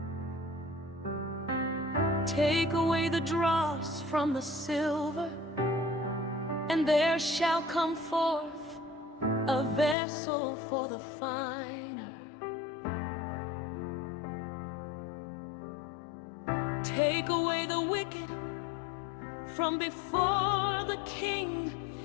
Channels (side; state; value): right; drops out; at 10.0 s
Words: Take away the dross from the silver, and there shall come forth a vessel for the finer. Take away the wicked from before the king,